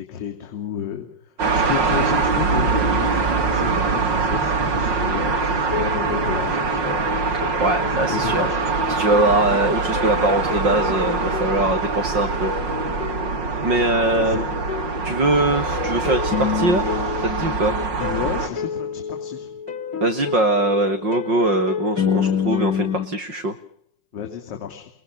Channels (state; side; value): late; left; 5.5 ms